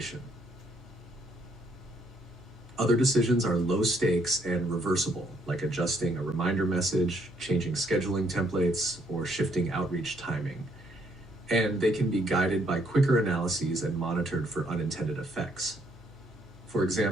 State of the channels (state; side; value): normal; both; correlation 0.69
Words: Other decisions are low stakes and reversible, like adjusting a reminder message, changing scheduling templates, or shifting outreach timing. And they can be guided by quicker analyses and monitored for unintended effects. For